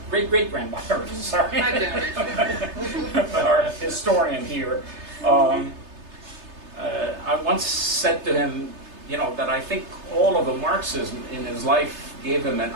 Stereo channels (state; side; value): late; left; 3.3 ms